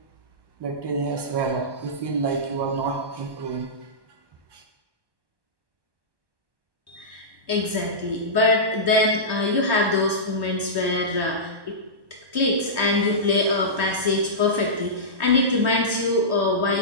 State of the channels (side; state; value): left; late; 1.1 ms